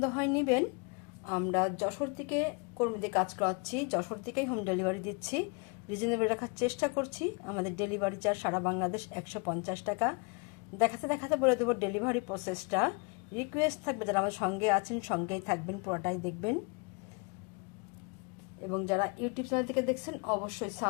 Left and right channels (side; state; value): right; quieter; 33.0 dB